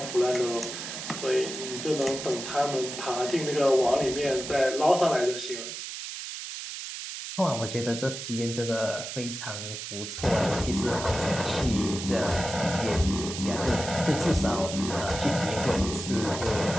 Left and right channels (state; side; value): noise; right; hiss, 8 dB below the sound